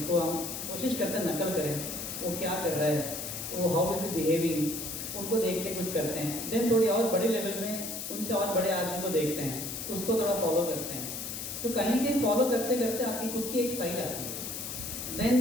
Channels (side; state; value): left; noise; hiss, 6 dB below the sound